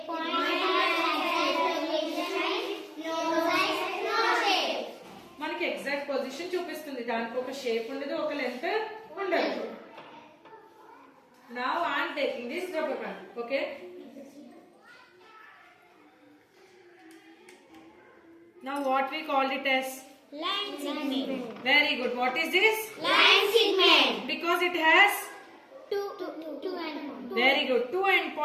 point has no size, no shape. మనకి exact position చూపిస్తుంది. దానికి ఒక shape ఉండదు, ఒక length ఉండదు. Now I am taking this rubber band. Okay. Now what we called it as? Line segment. Very good. What is this? Line segment. Because it has? Two end points. Very good. 2 end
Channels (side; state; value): both; identical; correlation 1.00